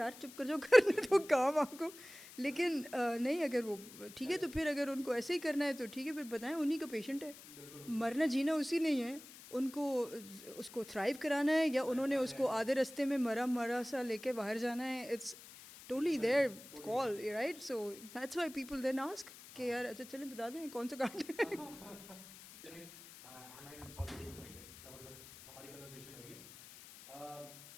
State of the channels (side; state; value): left; noise; hiss, 17 dB below the sound